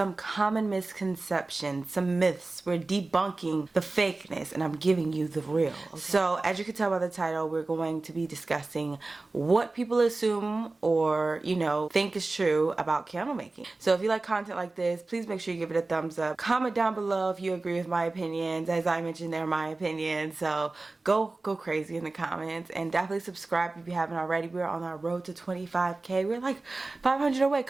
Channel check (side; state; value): left; quieter; 3.3 dB